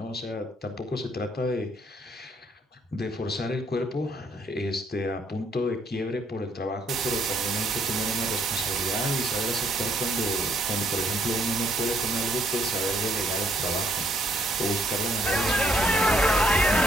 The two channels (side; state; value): both; normal; correlation 0.69